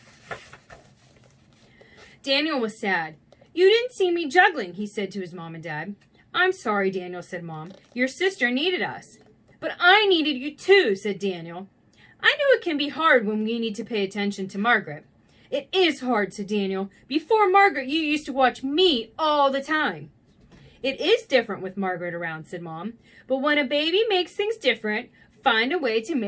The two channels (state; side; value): identical; both; correlation 1.00